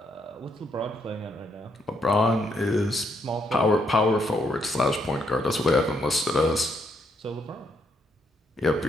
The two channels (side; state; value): both; normal; correlation 0.75